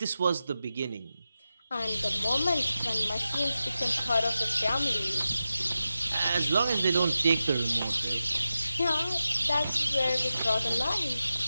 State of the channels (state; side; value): inverted; both; correlation -0.92